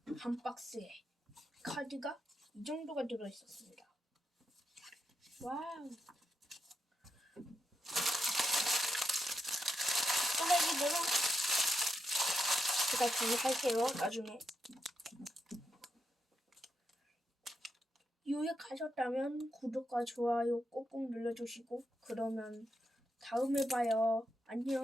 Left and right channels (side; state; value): both; normal; correlation 0.83